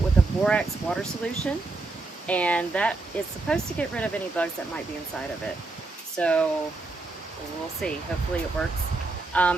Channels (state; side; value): quieter; left; 3.3 dB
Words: with a borax water solution, and that is supposed to get rid of any bugs that might be inside of it. So we'll see, hopefully it works.